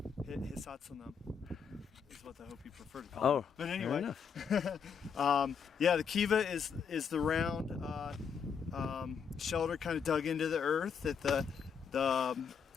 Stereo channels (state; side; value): quieter; right; 6.6 dB